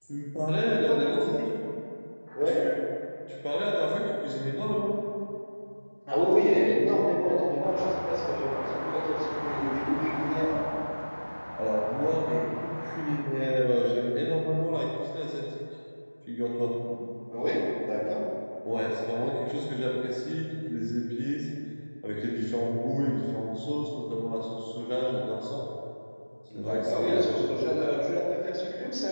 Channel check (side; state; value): both; inverted; correlation -1.00